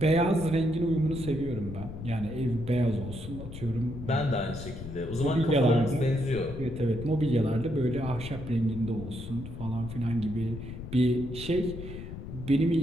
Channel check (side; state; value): left; noise; rumble, 10 dB below the sound